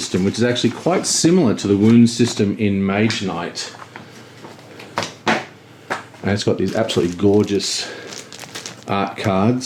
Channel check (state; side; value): identical; both; correlation 1.00